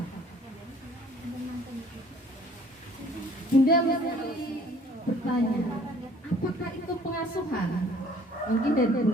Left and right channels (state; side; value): normal; both; correlation 0.55